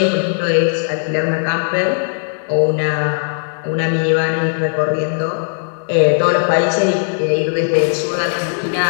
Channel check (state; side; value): silent; right; 65 dB below the other